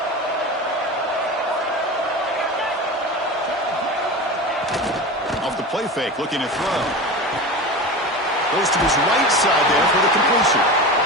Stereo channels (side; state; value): both; normal; correlation 0.28